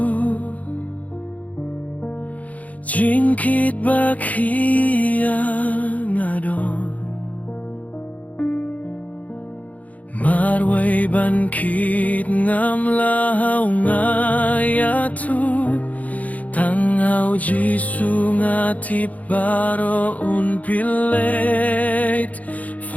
Jingkit bakia ngadon Marway bankit ngam lahau ngayatu Tangau Jisu ngati baro un pilet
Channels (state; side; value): late; right; 0.072 ms